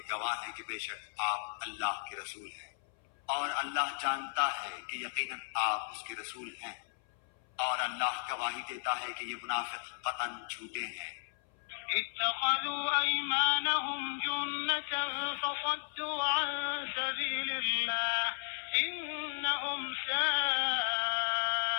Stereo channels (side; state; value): right; silent; 54 dB below the other